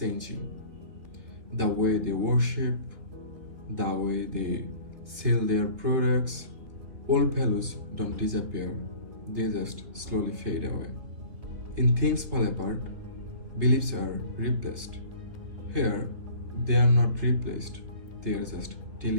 The way they worship, the way they sell their products, old values don't disappear, they just slowly fade away. In Things Fall Apart, beliefs are replaced. Here, they are not replaced, they are just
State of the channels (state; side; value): late; left; 3.6 ms